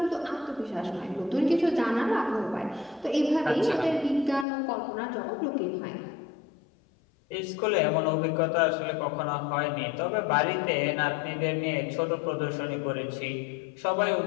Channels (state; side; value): drops out; right; at 4.5 s